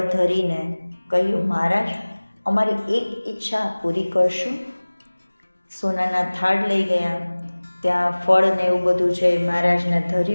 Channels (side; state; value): both; inverted; correlation -1.00